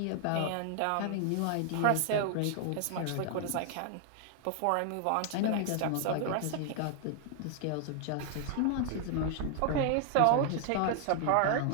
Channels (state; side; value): different; both; correlation 0.00